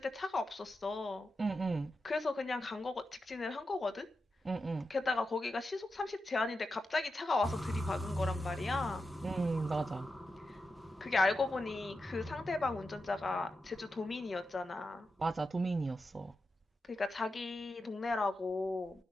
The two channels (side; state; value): both; normal; correlation 0.89